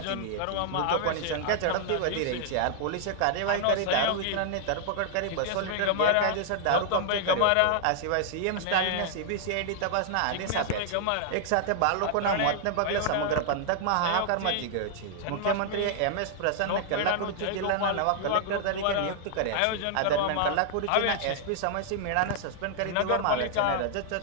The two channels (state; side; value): different; both; correlation -0.01